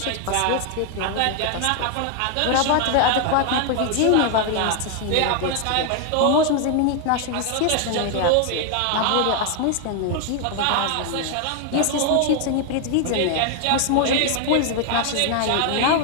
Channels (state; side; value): different; both; correlation 0.00